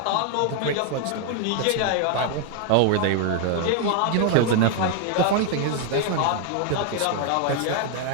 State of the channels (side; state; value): both; different; correlation 0.00